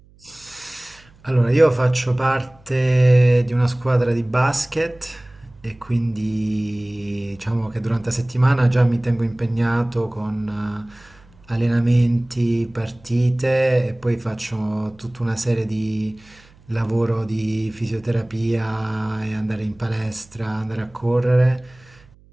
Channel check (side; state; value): right; noise; hum, 28 dB below the sound